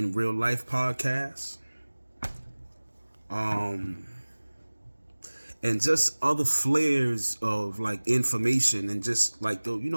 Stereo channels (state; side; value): inverted; both; correlation -1.00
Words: Real Life podcast. And just other flares of like information and just like